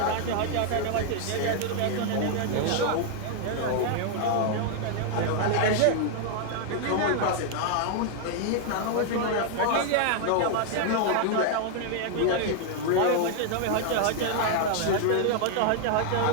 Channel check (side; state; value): both; different; correlation 0.00